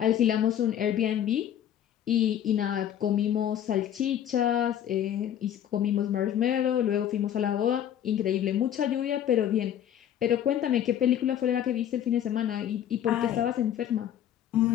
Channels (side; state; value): right; quieter; 10.3 dB